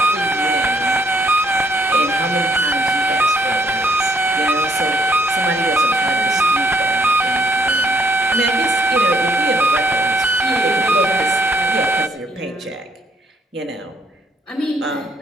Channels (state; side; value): normal; both; correlation 0.68